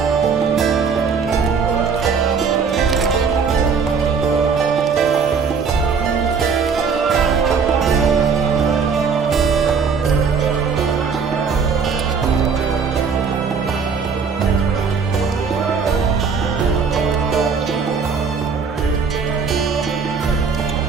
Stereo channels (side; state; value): left; quieter; 5.7 dB